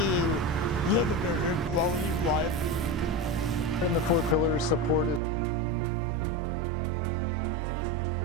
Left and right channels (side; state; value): left; drops out; at 5.2 s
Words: live a better quality of life. In the 4 pillars, support is the number one thing I feel like we can actively do